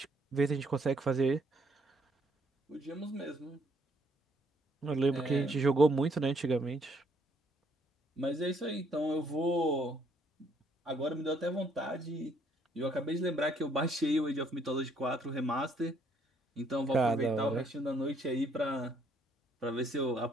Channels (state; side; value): normal; both; correlation 0.68